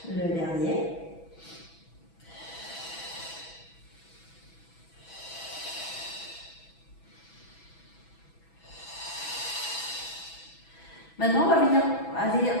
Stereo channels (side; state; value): right; late; 6.1 ms